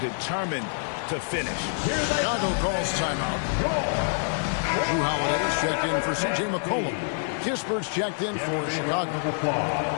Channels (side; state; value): right; silent; digital silence